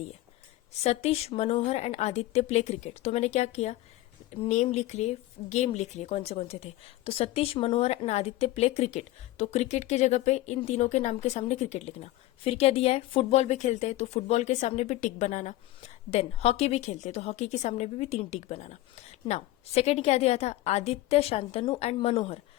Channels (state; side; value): quieter; right; 16.8 dB